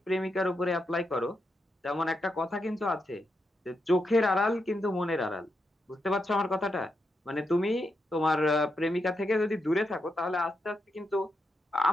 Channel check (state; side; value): normal; both; correlation 0.84